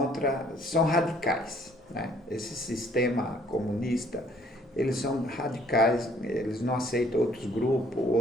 são radicais, né? Esse sistema comunista, eles são radicais, eles não aceitam outros grupos,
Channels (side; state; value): both; normal; correlation 0.60